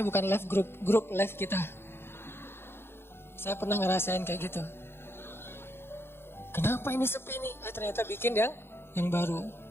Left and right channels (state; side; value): late; right; 0.11 ms